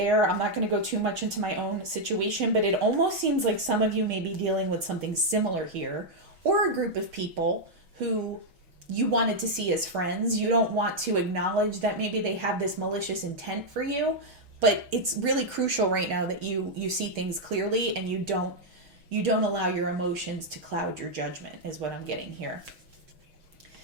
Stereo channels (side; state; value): left; late; 6.2 ms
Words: I'm not going to go too much into my own situation, but it almost seems like some of you may be dealing with something similar here, or a group of people who you wanted to see as friends. You don't want to acknowledge that maybe they have this malicious intent for you, but it's really crucial right now that you see things clearly and you don't allow your emotions to cloud your judgment, is what I'm getting here.